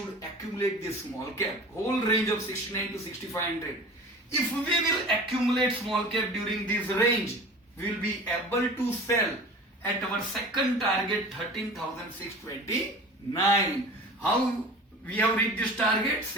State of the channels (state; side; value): normal; both; correlation 0.39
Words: accumulate this small cap, whole range of 69 to 6500. If we will accumulate small cap during this range, we will be able to sell at our second target 13,629. How we have reached this target?